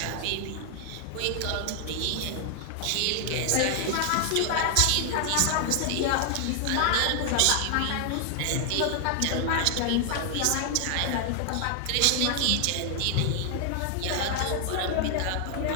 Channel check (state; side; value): different; both; correlation 0.00